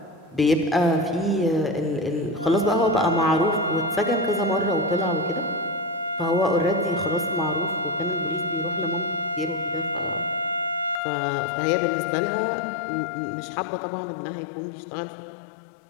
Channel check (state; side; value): drops out; right; at 11.0 s